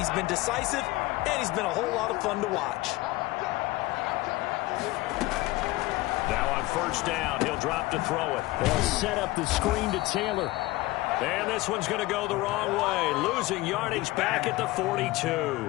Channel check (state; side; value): quieter; right; 19.6 dB